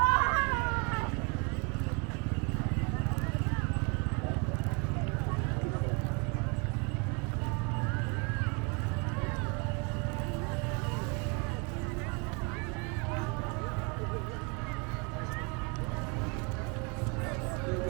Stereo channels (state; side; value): quieter; left; 31.3 dB